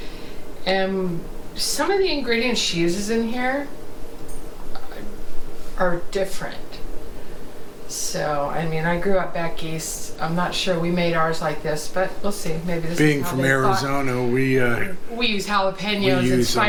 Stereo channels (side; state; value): both; identical; correlation 1.00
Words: And some of the ingredients she uses in here are different. So, I mean, I grew up back east. I'm not sure we made ours like this, but we'll see. Maybe this Being is how from they Arizona, we use jalapenos we and use